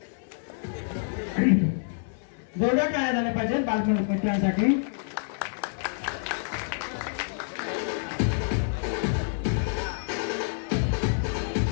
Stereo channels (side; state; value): right; silent; 60 dB below the other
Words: जोरदार काय झाले पाहिजे बालमित्रांसाठी।